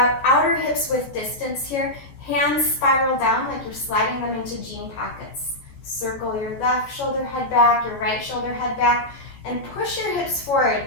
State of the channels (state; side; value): late; right; 14 ms